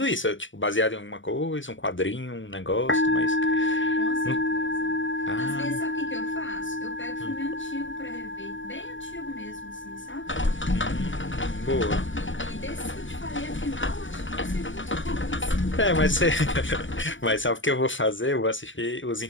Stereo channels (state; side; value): late; right; 0.56 ms